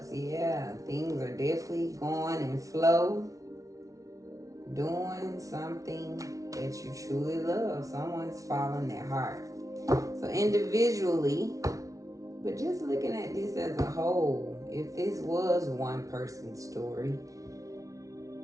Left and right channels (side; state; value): left; late; 0.17 ms